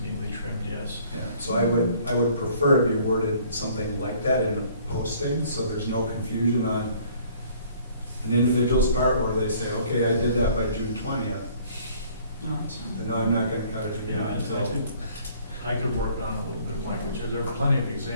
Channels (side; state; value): both; inverted; correlation -0.57